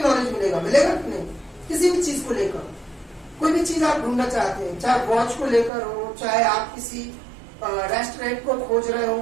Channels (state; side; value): drops out; left; at 5.7 s